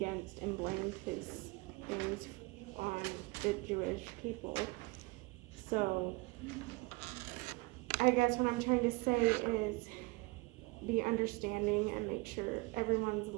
and blamed his things on the Jewish people. So, I guess what I'm trying to say is be understanding and make sure everyone's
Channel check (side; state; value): left; quieter; 24.7 dB